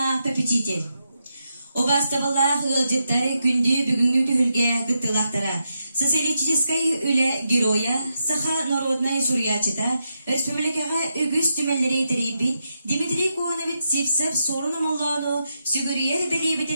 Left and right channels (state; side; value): inverted; both; correlation -0.84